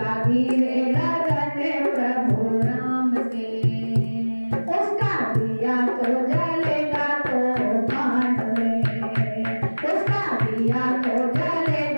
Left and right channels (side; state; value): both; inverted; correlation -1.00